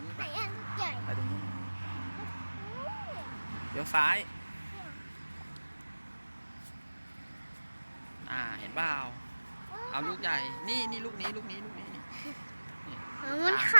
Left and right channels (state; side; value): inverted; both; correlation -1.00